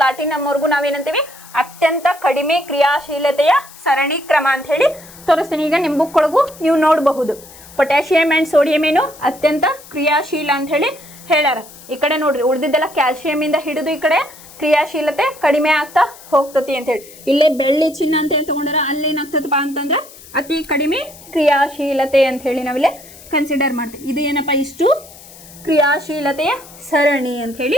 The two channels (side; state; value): left; noise; hiss, 20 dB below the sound